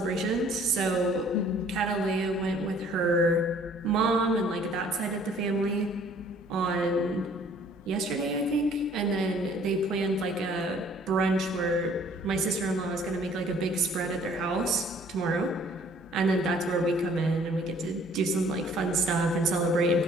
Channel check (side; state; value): both; normal; correlation 0.56